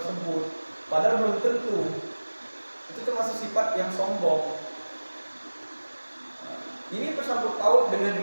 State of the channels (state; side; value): inverted; both; correlation -1.00